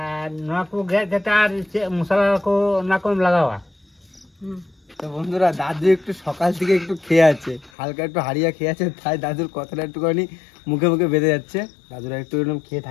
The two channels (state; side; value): drops out; right; at 7.7 s